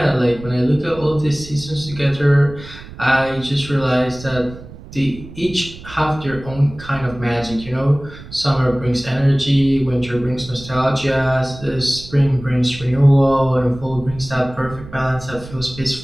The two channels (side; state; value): right; noise; rumble, 16 dB below the sound